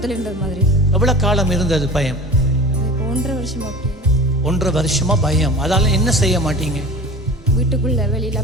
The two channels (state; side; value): normal; both; correlation 0.37